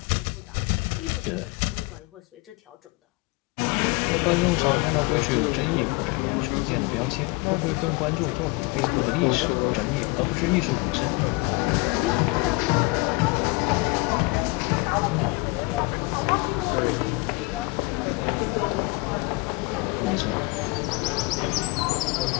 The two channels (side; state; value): right; quieter; 26.6 dB